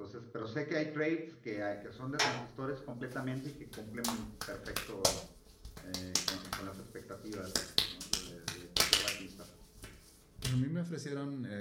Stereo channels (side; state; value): both; identical; correlation 1.00